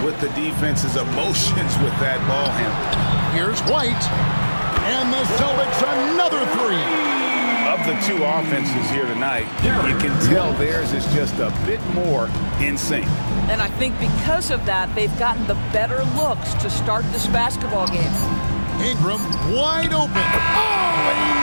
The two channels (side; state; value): both; inverted; correlation -1.00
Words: with the defense's emotions with that ball handle. Here's White. And the Celtics another three. Of the two offenses here tonight, you can tell theirs is just a bit more in sync. And I think because of that, they've gotten the better looks to start this basketball game. Ingram wide open. Oh, he